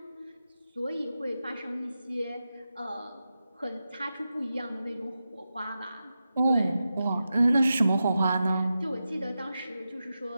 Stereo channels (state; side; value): inverted; both; correlation -0.91